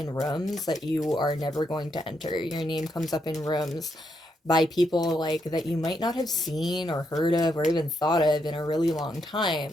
rooms that you are never going to enter. Your name comes up in rooms by people like that you might not have seen or heard of or even thought of in a really long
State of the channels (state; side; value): normal; both; correlation 0.79